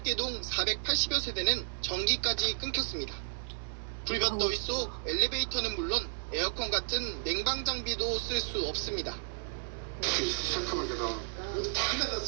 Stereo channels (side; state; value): left; silent; digital silence